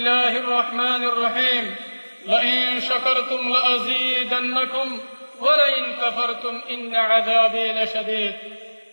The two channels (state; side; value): inverted; both; correlation -1.00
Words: الرحمن الرحيم لئن شكرتم لأزيدنكم ولئن كفرتم إن عذابي لشديد